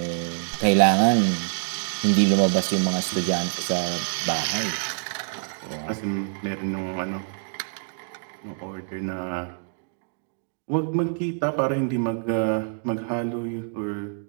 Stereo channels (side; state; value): left; silent; digital silence